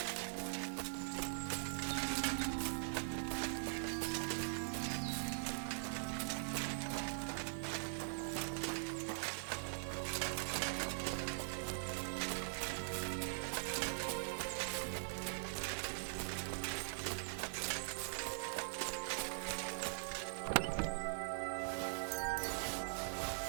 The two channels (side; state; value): left; silent; digital silence